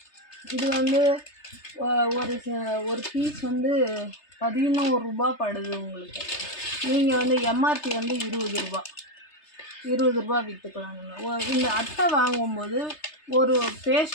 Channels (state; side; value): late; right; 3.3 ms